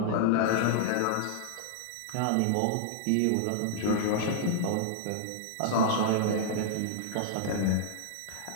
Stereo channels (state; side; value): different; both; correlation -0.01